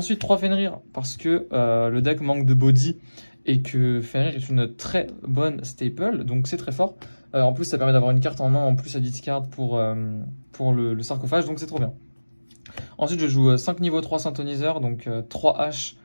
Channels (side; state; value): both; inverted; correlation -1.00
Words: 3 Fenrir, parce que le deck manque de body, et que Fenrir est une très bonne staple, donc c'est très fort. En plus, ça permet d'avoir une carte en main, en plus à discard pour le sarcophage, donc c'est trop bien. Ensuite, je joue 5 niveau 3 synthoniseur, donc 3 H,